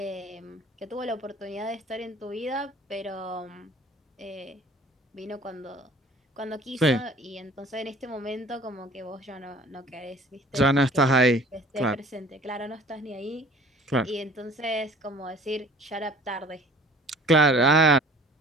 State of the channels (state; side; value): normal; both; correlation 0.49